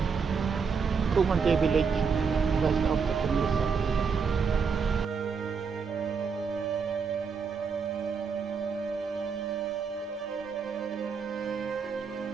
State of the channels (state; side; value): quieter; left; 5.7 dB